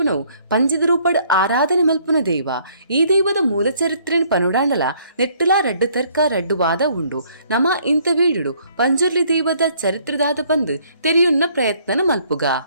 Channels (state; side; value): inverted; both; correlation -0.63